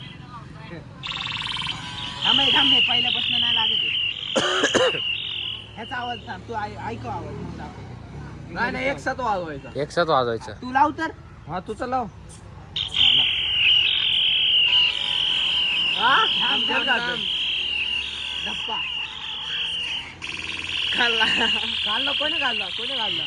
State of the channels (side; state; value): both; identical; correlation 1.00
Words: पहिल्यापासून नाही लागत ह्याचा आवाज थांब तू ऐकव आवाज मग दाखव. नाही एक साथ वाजवायचं तू लाव तर हा तुझं लाव धप्पा खाल्ला कोणी खाल्ला